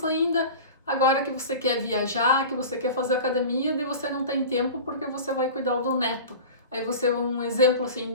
ainda. Agora que você quer viajar, que você quer fazer academia, daí você não tem tempo porque você vai cuidar do neto. Aí você, um exemplo assim,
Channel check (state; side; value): inverted; both; correlation -0.34